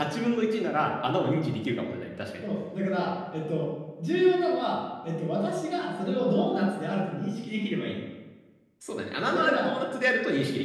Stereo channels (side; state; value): both; identical; correlation 1.00